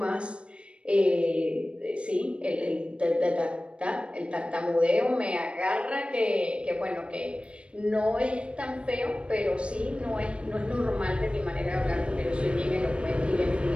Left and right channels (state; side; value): late; left; 0.059 ms